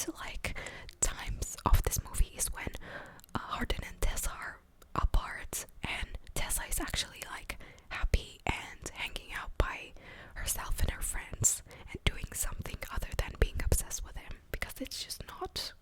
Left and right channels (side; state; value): both; identical; correlation 1.00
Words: like, times of this movie is when Hardin and Tessa are apart, and Tessa is actually, like, happy and hanging out by herself and her friends and doing something other than being obsessed with him, because it's just not.